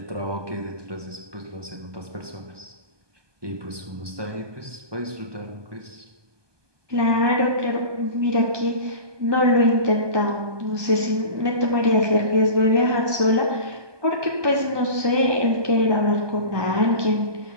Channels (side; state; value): left; late; 1.2 ms